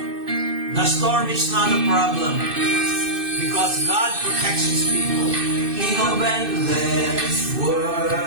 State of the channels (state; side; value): late; left; 2.6 ms